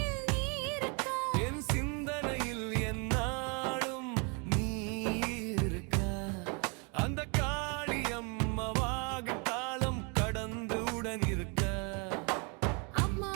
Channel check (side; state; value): left; quieter; 33.5 dB